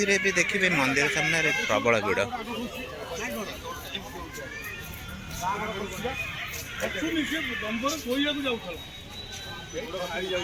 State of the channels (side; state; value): both; identical; correlation 1.00